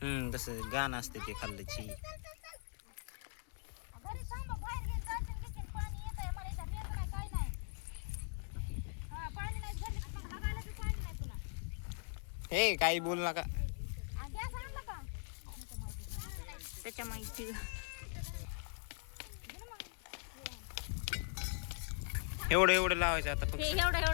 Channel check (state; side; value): silent; right; 50 dB below the other